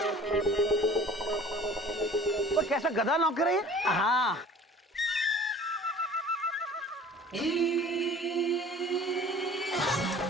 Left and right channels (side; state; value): both; normal; correlation 0.47